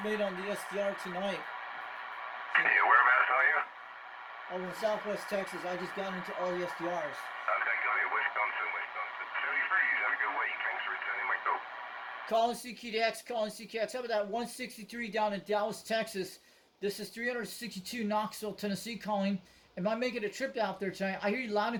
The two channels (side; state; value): both; identical; correlation 1.00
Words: made on the SDR tonight. So, yeah, whereabouts are you? Over in Southwest Texas. I just got into all the SDRs. Okay, got it. Wisconsin. 33s, have a good week. Thanks for returning my call. Calling CQDX, calling CQX. How about that 163 down in Dallas, Texas? This is 362 Knoxville, Tennessee calling. Am I making a trip out there tonight? I hear you loud